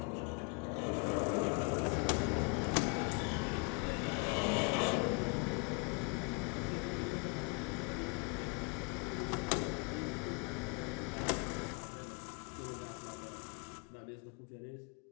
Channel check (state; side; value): quieter; right; 33.2 dB